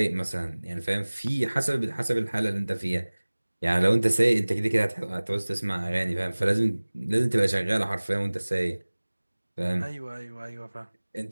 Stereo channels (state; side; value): inverted; both; correlation -1.00